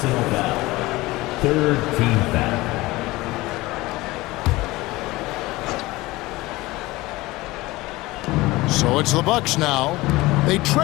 foul. Third team foul. So it's the Bucks now. They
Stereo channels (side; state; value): right; quieter; 20.0 dB